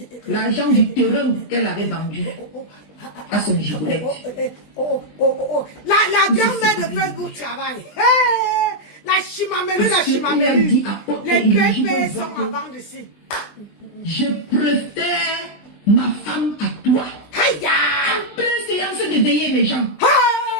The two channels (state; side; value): late; right; 20 ms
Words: l'argent du terrain qu'elle avait vendu à son gigolette. La grand-mère de Facebook travaille. La chimamelu. Les pépés sont en vente ici. Je préfère ma femme à toi. En pleine séance de veiller les gens.